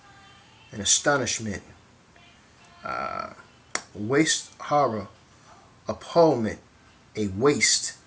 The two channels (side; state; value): both; identical; correlation 1.00